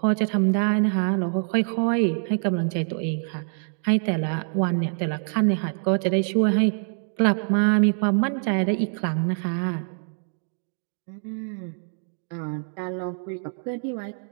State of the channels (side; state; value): left; silent; 59 dB below the other